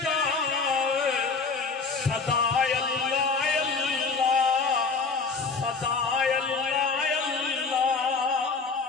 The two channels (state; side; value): quieter; right; 4.6 dB